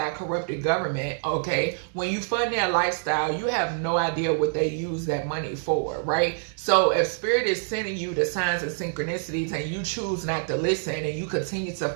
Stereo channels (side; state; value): left; silent; 61 dB below the other